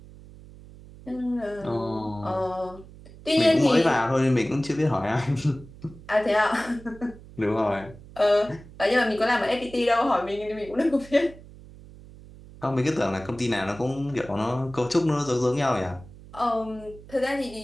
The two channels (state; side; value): noise; right; hum, 19 dB below the sound